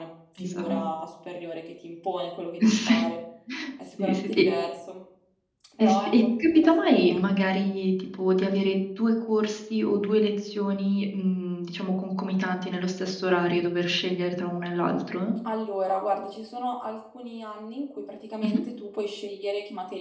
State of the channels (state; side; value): identical; both; correlation 1.00